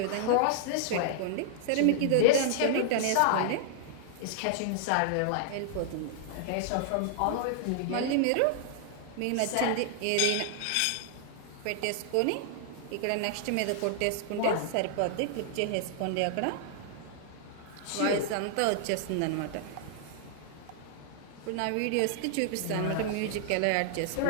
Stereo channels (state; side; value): different; both; correlation -0.01